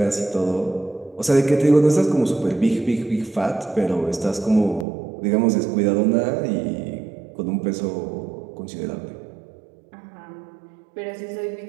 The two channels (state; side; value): drops out; left; at 4.9 s